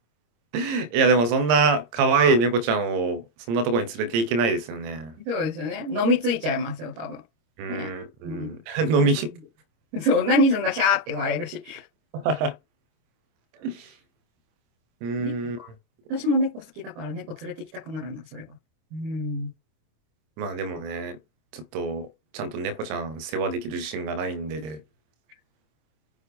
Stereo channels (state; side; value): late; left; 26 ms